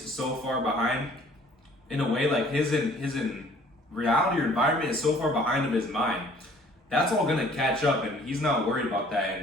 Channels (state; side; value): normal; both; correlation 0.55